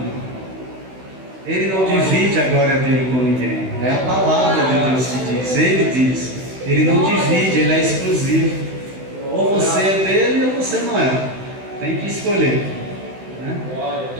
Ele não divide a glória dele com ninguém, é a palavra de Deus que diz, ele diz, ele não divide, ele é exclusivo. Ou você é dele ou você não é, tem que escolher, né?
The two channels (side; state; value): left; late; 16 ms